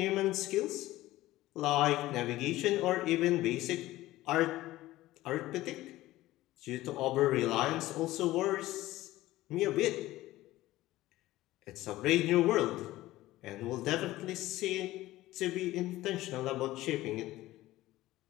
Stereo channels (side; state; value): right; quieter; 16.7 dB